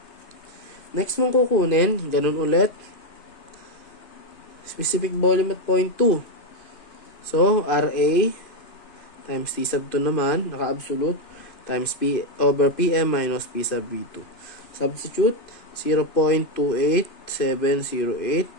Next mong kukunin, ganun ulit. Specific volume at 0.2. So, RA times T sub 2 naman, naka-absolute, times P over PM minus P sub V2. Substitute,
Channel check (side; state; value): right; late; 2.6 ms